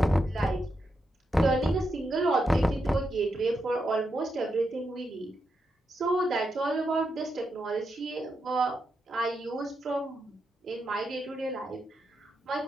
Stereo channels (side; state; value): both; normal; correlation 0.84